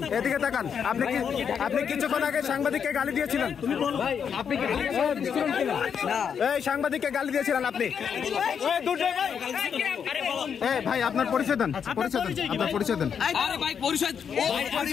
এদিকে তাকান। আপনি কিছুক্ষণ আগে সাংবাদিককে গালি দিয়েছিলেন। এই সাংবাদিককে গালি দিয়েছিলেন আপনি। ভাই আপনার পরিচয় দেন। আপনার পরিচয় দেন।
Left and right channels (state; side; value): quieter; right; 7.3 dB